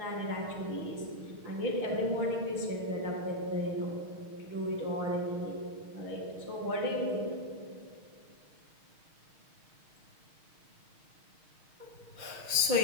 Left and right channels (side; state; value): left; late; 6.4 ms